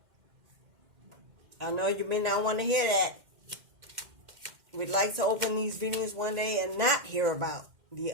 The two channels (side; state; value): left; late; 2.1 ms